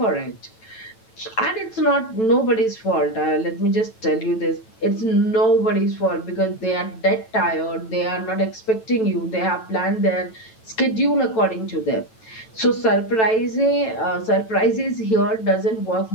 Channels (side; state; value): right; late; 9.1 ms